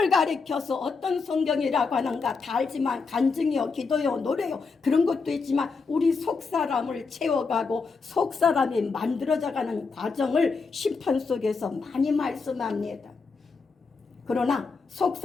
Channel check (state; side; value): quieter; right; 4.7 dB